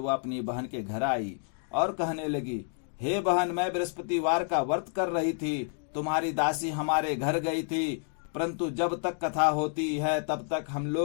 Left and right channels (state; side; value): silent; right; 58 dB below the other